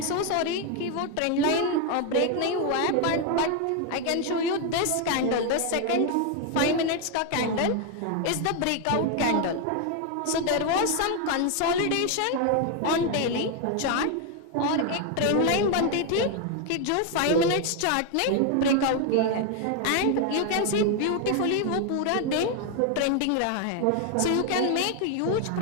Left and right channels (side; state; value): both; different; correlation 0.01